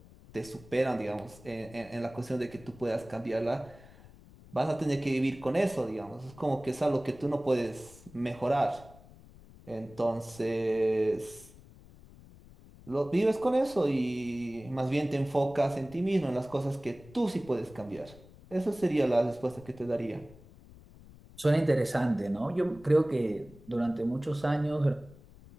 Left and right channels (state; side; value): noise; left; rumble, 21 dB below the sound